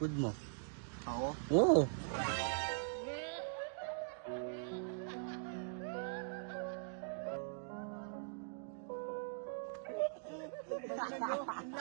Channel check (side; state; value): left; silent; digital silence